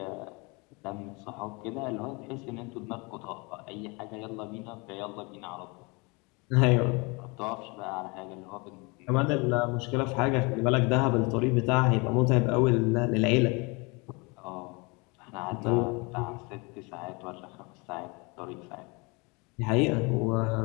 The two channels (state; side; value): quieter; right; 28.4 dB